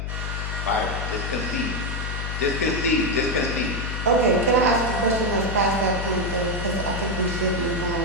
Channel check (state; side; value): noise; left; hum, 4 dB below the sound